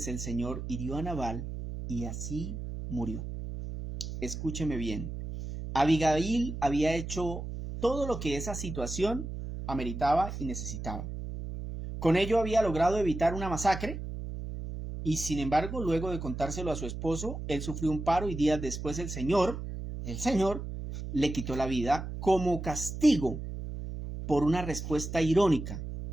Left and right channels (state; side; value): noise; right; hum, 7 dB below the sound